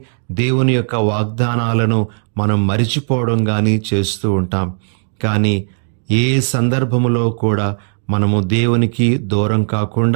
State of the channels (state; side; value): silent; left; digital silence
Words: దేవుని యొక్క వాగ్దానాలను మనం మరిచిపోవడం కానీ చేస్తూ ఉంటాం. కానీ ఏ సందర్భములో కూడా మనము దేవునికి దూరం